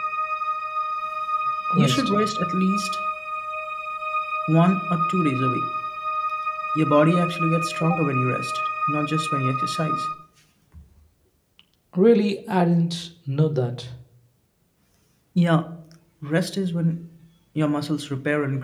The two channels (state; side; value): identical; both; correlation 1.00